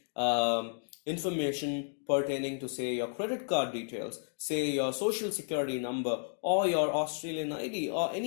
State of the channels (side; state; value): right; silent; digital silence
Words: information pertaining to, say, your credit card details, say your social security number, or your Australian ID, or